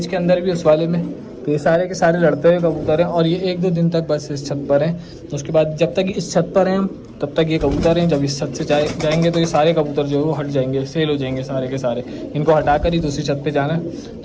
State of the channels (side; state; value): both; identical; correlation 1.00